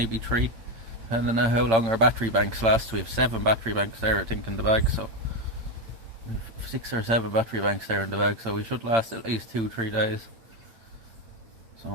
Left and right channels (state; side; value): late; left; 8.8 ms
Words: 3. I don't know how long our battery banks last. We have 7 battery banks there, I think, in the bag. So we have 6 or 7 battery banks there in the bag. So we should last at least 2-3 days. So